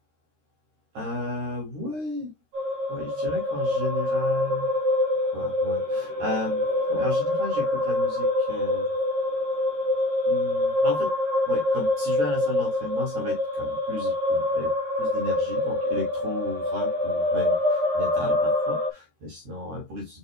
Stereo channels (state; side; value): late; left; 13 ms